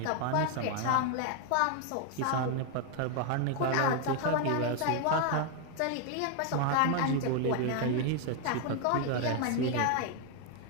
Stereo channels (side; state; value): both; different; correlation 0.01